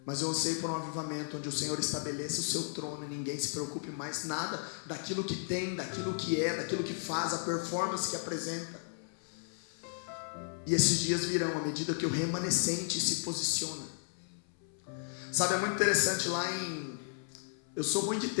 Mas eu anseio por um avivamento onde o Senhor estabeleça o seu trono e ninguém se preocupe mais nada daquilo que tem, daquilo que é, daquilo que faz, a performance que apresenta. E esses dias virão à medida que o remanescente se posiciona. Sabe, é muito interessante lá eu sou ruim de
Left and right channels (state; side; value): silent; right; 55 dB below the other